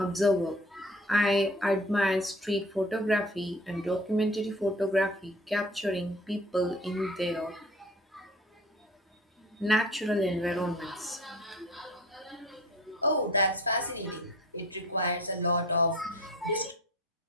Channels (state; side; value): normal; both; correlation 0.44